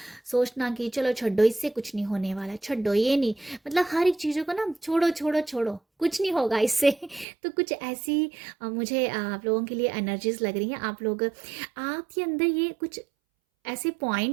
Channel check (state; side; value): drops out; left; at 7.2 s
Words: सोचना कि चलो छोड़ो, इससे कुछ नहीं होने वाला, छोड़ो ये नहीं, मतलब हर एक चीज़ों को ना छोड़ो छोड़ो छोड़ो, कुछ नहीं होगा इससे। तो कुछ ऐसी मुझे आप लोगों के लिए एनर्जीज लग रही हैं। आप लोग, आपके अंदर ये कुछ ऐसे